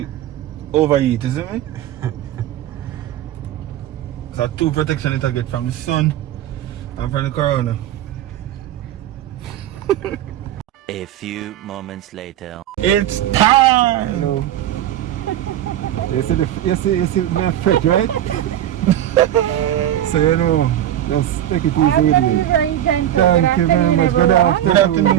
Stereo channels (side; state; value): left; quieter; 12.0 dB